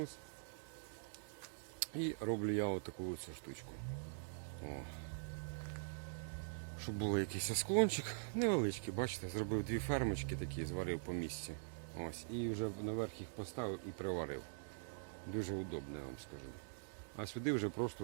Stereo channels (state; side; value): silent; left; digital silence